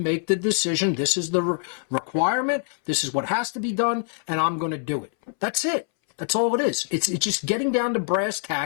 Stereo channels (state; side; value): silent; right; 62 dB below the other